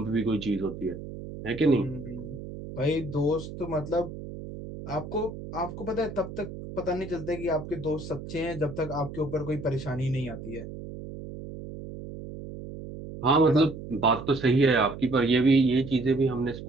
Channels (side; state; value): right; noise; hum, 11 dB below the sound